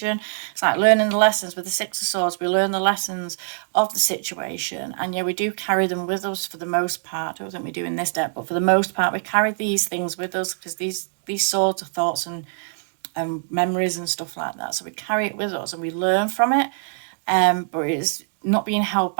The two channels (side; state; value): left; silent; digital silence